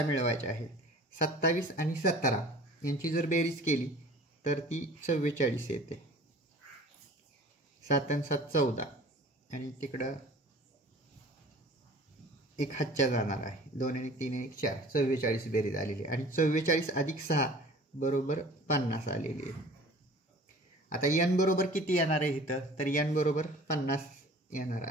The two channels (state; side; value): normal; both; correlation 0.45